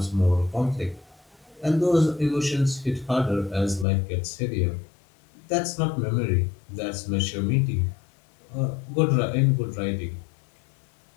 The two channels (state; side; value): drops out; right; at 3.9 s